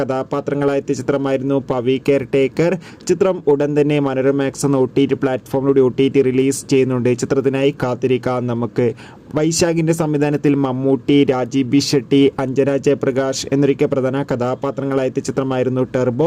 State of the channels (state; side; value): identical; both; correlation 1.00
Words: കഥാപാത്രങ്ങളായ ചിത്രമായിരുന്നു പവി കെയർ ടേക്കർ. ചിത്രം ഉടൻ തന്നെ മനോരമാക്സ് എന്ന OTT പ്ലാറ്റ്ഫോമിലൂടെ OTT റിലീസ് ചെയ്യുന്നുണ്ട്. ചിത്രത്തിനായി കാത്തിരിക്കാം നമുക്ക്. വൈശാഖിൻ്റെ സംവിധാനത്തിൽ മമ്മൂട്ടി, രാജീവ് ബി ഷെട്ടി, അഞ്ജന ജയപ്രകാശ് എന്നൊക്കെ പ്രധാന കഥാപാത്രങ്ങളായ ചിത്രമായിരുന്നു